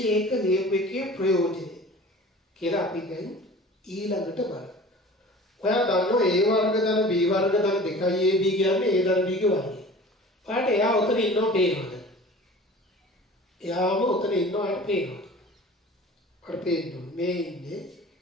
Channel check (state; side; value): normal; both; correlation 0.42